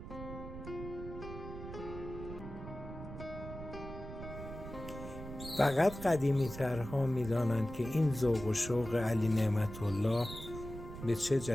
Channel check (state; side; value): noise; right; rumble, 10 dB below the sound